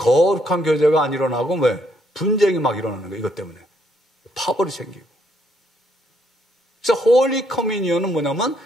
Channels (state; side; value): normal; both; correlation 0.72